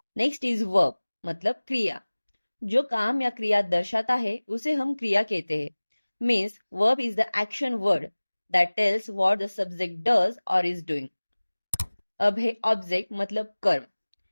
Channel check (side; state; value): both; inverted; correlation -1.00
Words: Next is verb मतलब क्रिया, जो काम या क्रिया दर्शाता है उसे हम क्रिया कहते हैं। Means verb is the action word that tells what the subject does और इज डूइंग। अब है ऑब्जेक्ट मतलब कर्म,